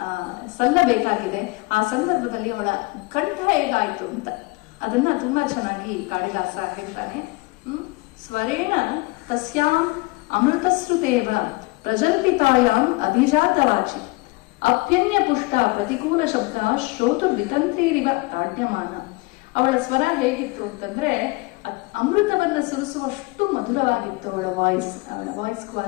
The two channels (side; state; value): right; quieter; 24.1 dB